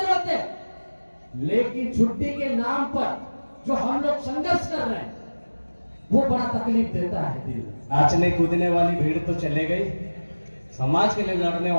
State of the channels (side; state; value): both; inverted; correlation -1.00